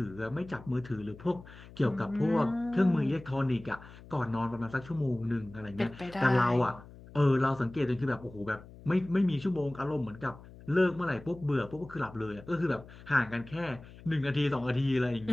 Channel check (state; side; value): noise; left; hum, 19 dB below the sound